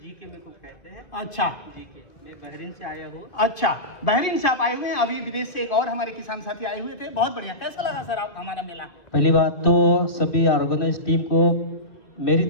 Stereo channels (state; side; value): late; right; 2.0 ms